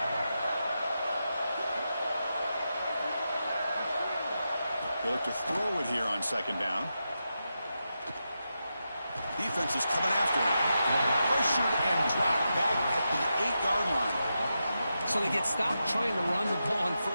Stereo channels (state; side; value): inverted; both; correlation -0.88